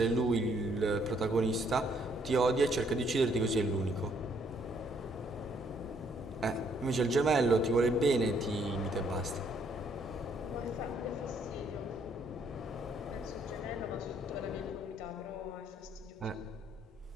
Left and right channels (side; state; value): both; normal; correlation 0.68